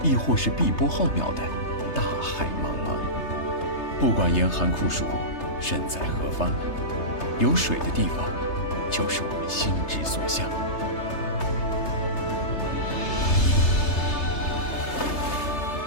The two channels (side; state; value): right; late; 3.3 ms